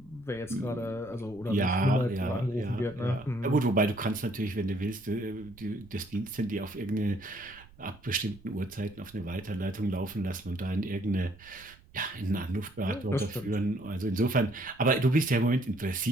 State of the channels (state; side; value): noise; right; rumble, 24 dB below the sound